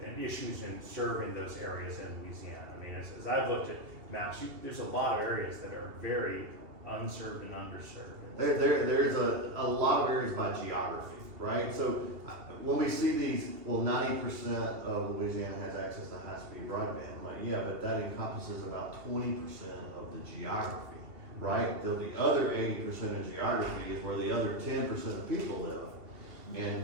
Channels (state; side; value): late; left; 2.8 ms